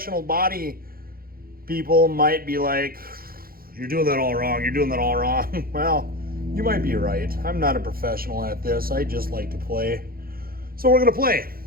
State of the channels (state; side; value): late; left; 0.43 ms